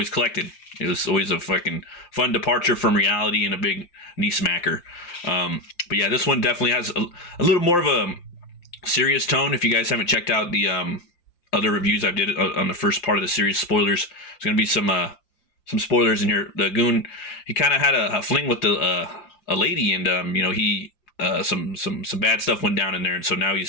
collected. It was always a fucking fun departure from reality and a big knee smacker. But yeah, this one definitely has a little more of a serious tone. If you guys haven't checked out the other reviews I've did on the first part of the series, spoilers. There's gonna be some spoilers in here. The Goon, he kind of had a fling with a lady, and he some bad stuff went down in there, and so now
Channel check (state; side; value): late; right; 5.7 ms